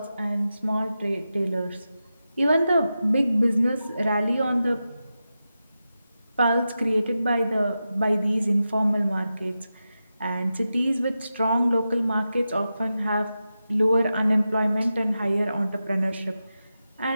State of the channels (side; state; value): both; inverted; correlation -0.91